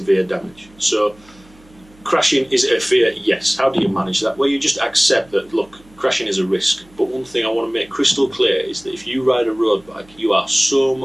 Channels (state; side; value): noise; right; hum, 27 dB below the sound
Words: damage. So, crashing, is it a fear? Yes. How do you manage that? Well, you just accept that, look, crashing is a risk. But one thing I want to make crystal clear is that if you ride a road bike, you are so